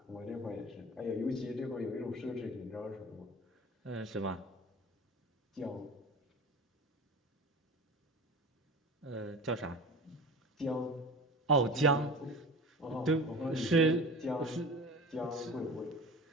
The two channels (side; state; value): both; normal; correlation 0.34